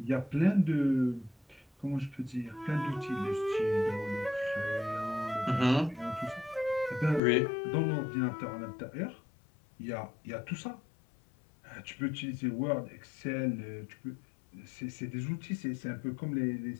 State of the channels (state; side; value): drops out; right; at 7.2 s